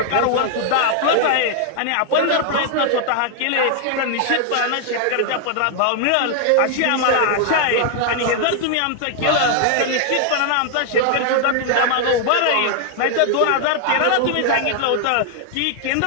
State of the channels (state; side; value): different; both; correlation 0.00